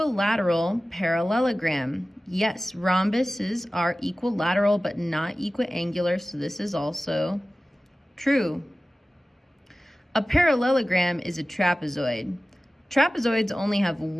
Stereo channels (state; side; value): normal; both; correlation 0.96